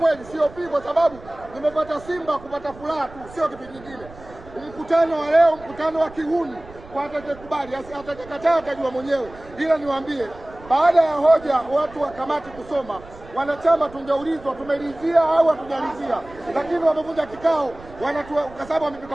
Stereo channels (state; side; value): noise; right; rumble, 19 dB below the sound